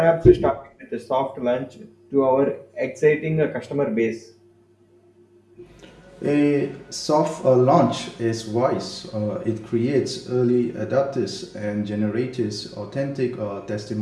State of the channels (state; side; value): identical; both; correlation 1.00